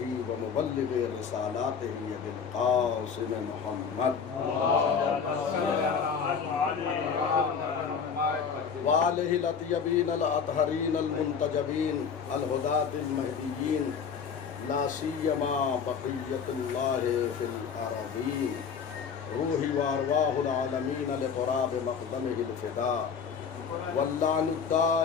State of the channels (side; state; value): right; quieter; 6.4 dB